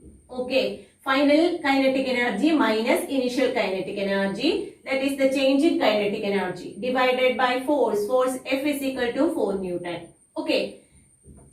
Okay, final kinetic energy minus initial kinetic energy, that is the change in kinetic energy, divided by force. Force F is equal to 4 Newton. Okay,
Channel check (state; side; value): identical; both; correlation 1.00